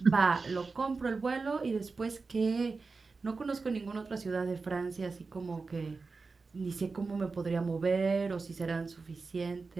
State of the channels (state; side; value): quieter; left; 4.2 dB